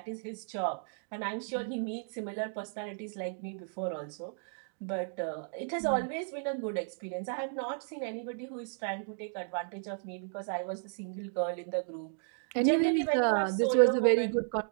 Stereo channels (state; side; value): silent; left; digital silence